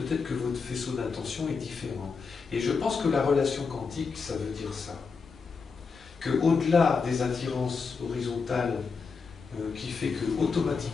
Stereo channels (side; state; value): right; quieter; 5.1 dB